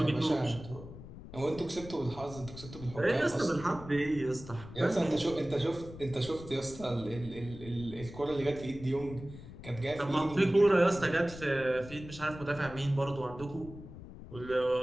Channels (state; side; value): noise; left; rumble, 14 dB below the sound